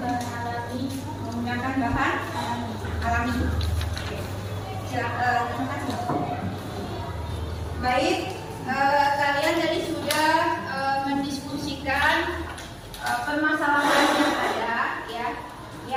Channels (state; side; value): identical; both; correlation 1.00